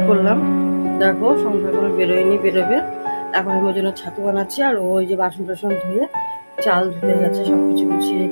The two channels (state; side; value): inverted; both; correlation -1.00